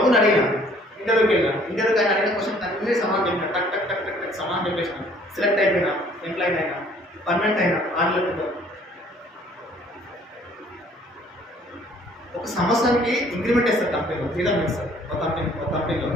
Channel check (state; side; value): normal; both; correlation 0.58